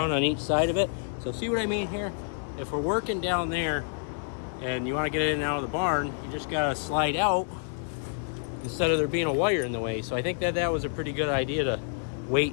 on each side of it. So see what I mean here? If we're working down there and you want to get in and out of the barn, you just got to slide out instead of there being a wire in the way. So I think that was a pretty good idea to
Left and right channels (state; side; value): silent; right; digital silence